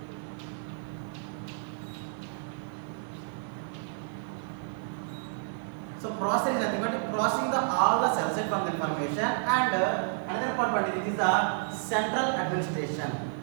so processor is nothing but processing the all the cell site from the information, and another important is the central administration.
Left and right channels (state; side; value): silent; left; 57 dB below the other